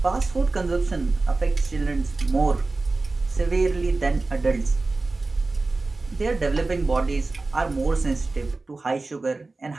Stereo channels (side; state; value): left; quieter; 3.5 dB